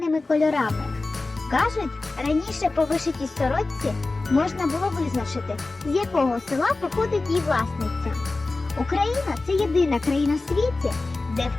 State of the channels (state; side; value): quieter; right; 3.4 dB